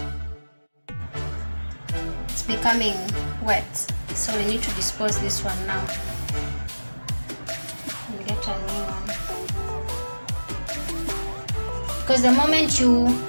It's becoming wet, so we need to dispose this one now and get a new one. Because the moment you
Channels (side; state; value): both; inverted; correlation -1.00